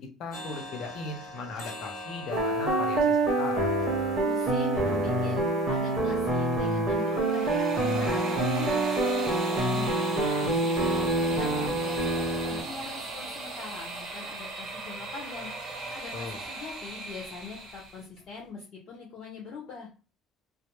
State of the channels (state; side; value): normal; both; correlation 0.39